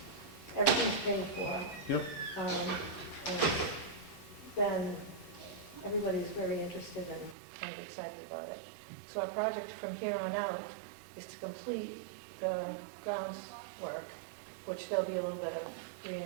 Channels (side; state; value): left; drops out; at 7.4 s